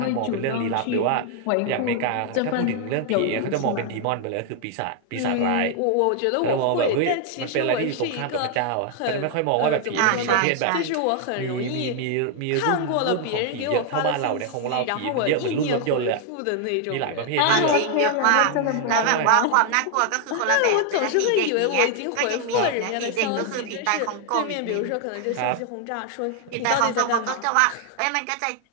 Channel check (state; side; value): different; both; correlation 0.00